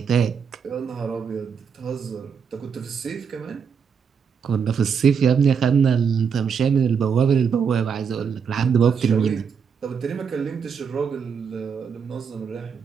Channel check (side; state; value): left; quieter; 6.6 dB